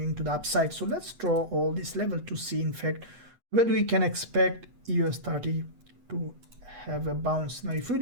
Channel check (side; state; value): left; late; 8.3 ms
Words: to the upside. So let's draw all this level to see in fact where we can expect US30 to have a bounce. Now if we